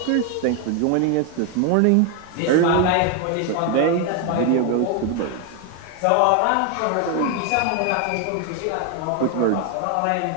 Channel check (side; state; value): both; different; correlation 0.01